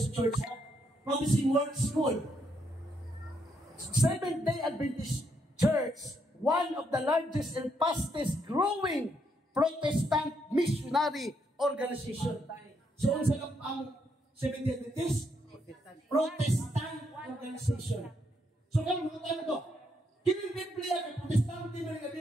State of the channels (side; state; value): both; normal; correlation 0.76